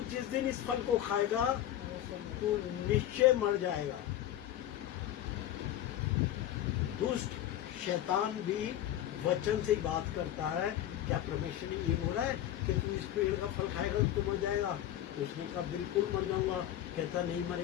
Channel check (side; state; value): right; quieter; 12.3 dB